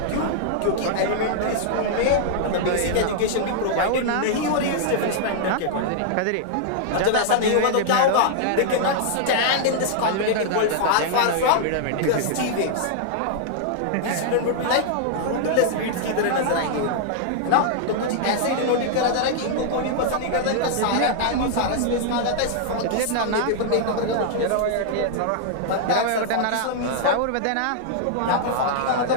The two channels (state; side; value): different; both; correlation -0.01